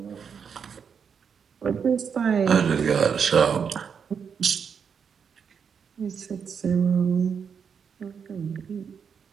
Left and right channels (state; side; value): quieter; left; 6.8 dB